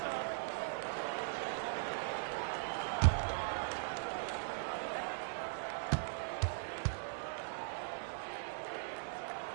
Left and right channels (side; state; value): left; silent; digital silence